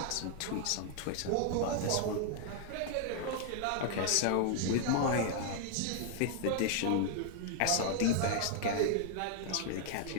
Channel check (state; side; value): different; both; correlation 0.00